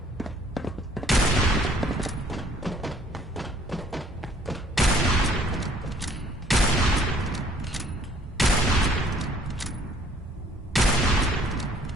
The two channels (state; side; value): normal; both; correlation 0.60